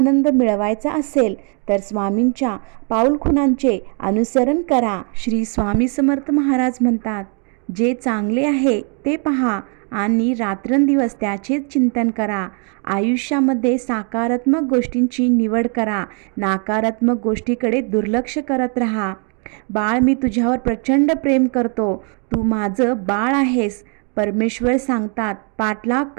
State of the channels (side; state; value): left; quieter; 39.9 dB